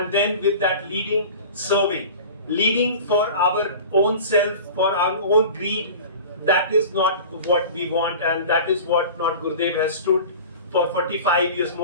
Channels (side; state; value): both; inverted; correlation -0.38